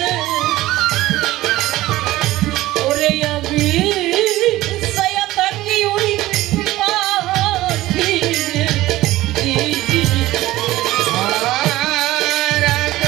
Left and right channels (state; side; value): quieter; left; 16.8 dB